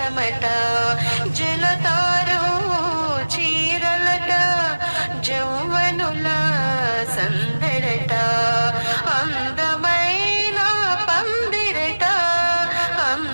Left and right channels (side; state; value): both; inverted; correlation -1.00